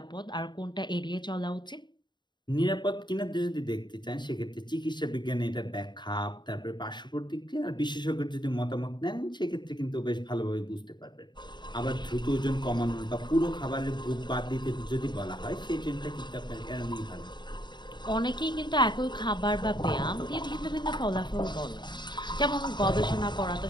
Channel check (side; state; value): right; late; 0.22 ms